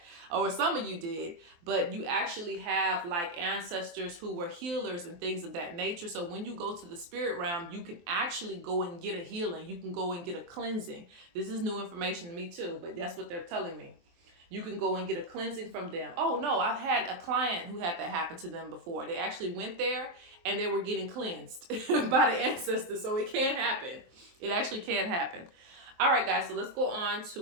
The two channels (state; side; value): late; left; 23 ms